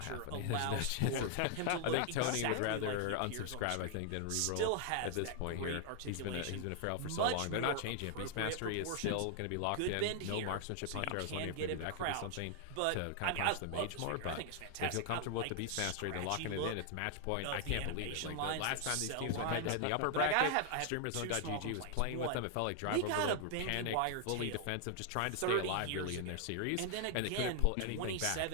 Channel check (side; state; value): both; different; correlation 0.00